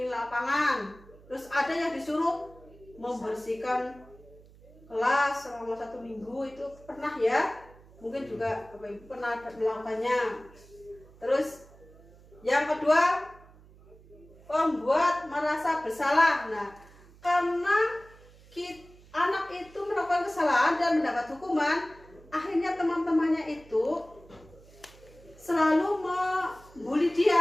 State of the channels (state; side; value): noise; right; hum, 24 dB below the sound